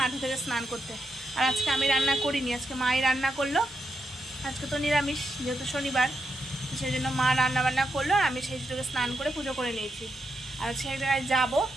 ঢুকে স্নান করতে। আর আজকে আমি রান্না করিনি, আজকে মাই রান্না করলো। আজকে তো নিরামিষ, যেহেতু শনিবার, সেই জন্য মা রান্না করলো। আর আমি সেই সুযোগে স্নান করে পুজো করে নিয়েছি। আর সেই জায়গায় যাবো,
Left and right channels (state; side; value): normal; both; correlation 0.84